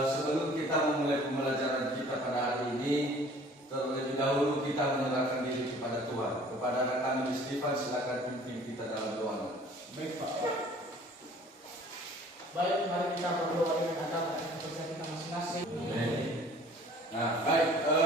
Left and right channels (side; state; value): both; normal; correlation 0.51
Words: Sebelum kita memulai pembelajaran kita pada hari ini, terlebih dahulu kita menyerahkan diri kepada Tuhan. Kepada anak kami Stefan, silakan pimpin kita dalam doa. Baik, Pak. Baik, mari kita berdoa dengan agama dan kepercayaan kita masing-masing. Nah, baik.